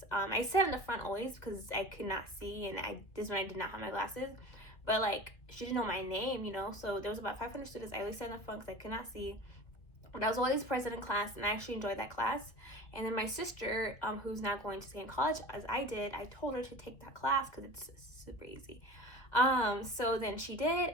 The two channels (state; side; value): late; right; 2.2 ms